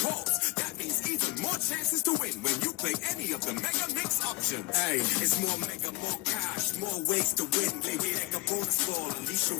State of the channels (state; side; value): quieter; right; 20.3 dB